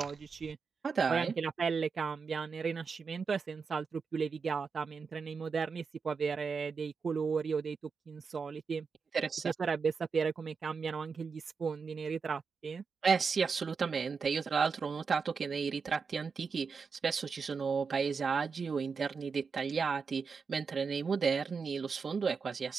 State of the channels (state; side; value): quieter; left; 5.3 dB